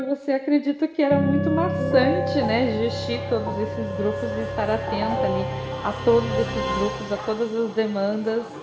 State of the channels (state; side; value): identical; both; correlation 1.00